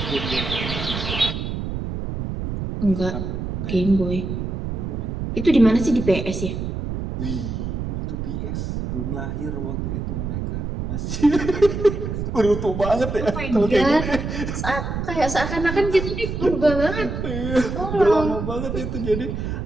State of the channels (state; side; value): noise; right; rumble, 4 dB below the sound